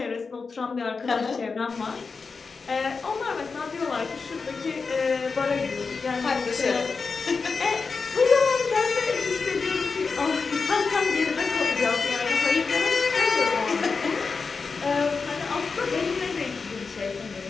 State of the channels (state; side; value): quieter; right; 4.8 dB